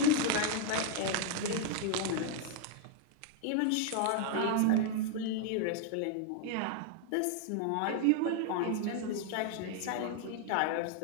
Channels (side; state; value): both; different; correlation 0.00